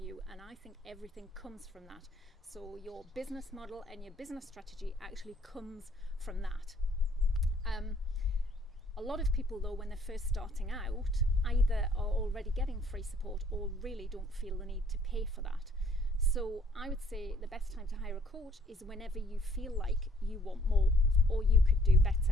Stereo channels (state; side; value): normal; both; correlation 0.62